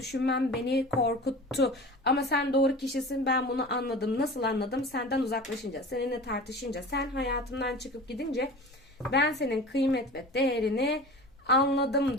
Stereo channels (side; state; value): both; normal; correlation 0.37